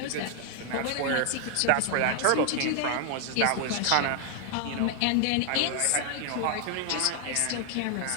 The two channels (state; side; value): different; both; correlation 0.00